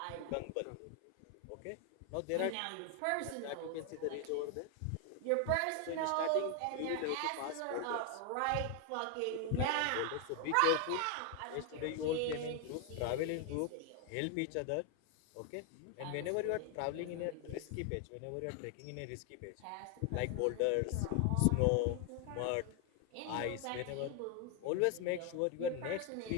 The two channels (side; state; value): both; different; correlation 0.01